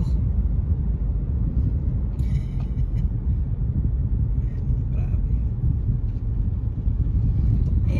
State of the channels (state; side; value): identical; both; correlation 1.00